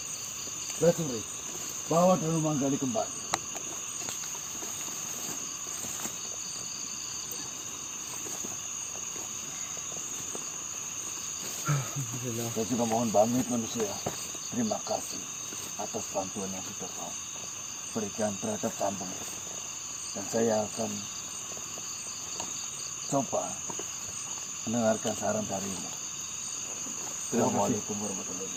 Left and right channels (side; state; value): both; identical; correlation 1.00